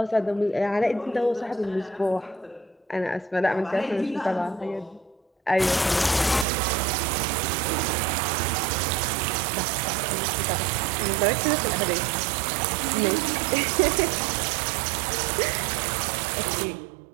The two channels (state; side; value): drops out; left; at 6.5 s